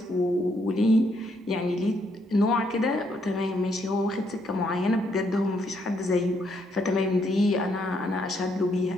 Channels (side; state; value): both; normal; correlation 0.74